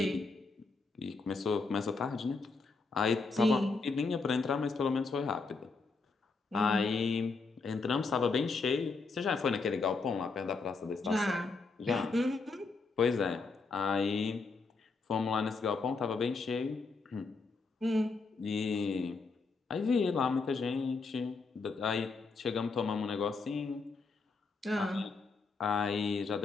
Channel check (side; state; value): right; quieter; 4.2 dB